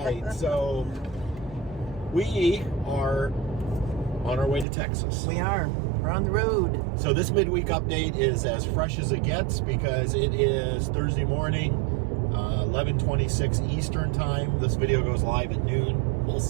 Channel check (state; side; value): drops out; left; at 4.7 s